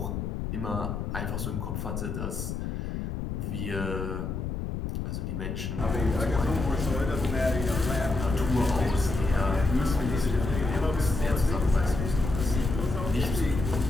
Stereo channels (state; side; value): noise; left; rumble, 4 dB below the sound